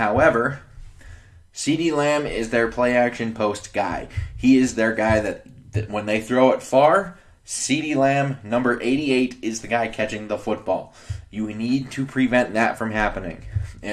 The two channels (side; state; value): both; identical; correlation 1.00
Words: CeeDee Lamb is their play action post guy. He is their guy that when they throw it far, CeeDee Lamb, number 88, is the guy catching the football. You need to prevent that from happening.